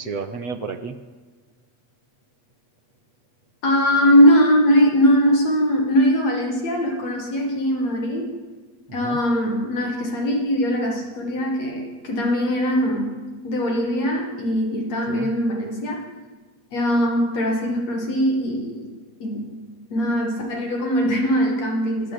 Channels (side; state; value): right; late; 8.5 ms